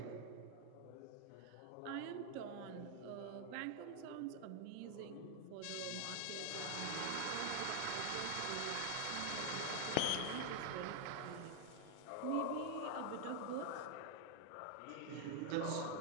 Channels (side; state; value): both; different; correlation 0.00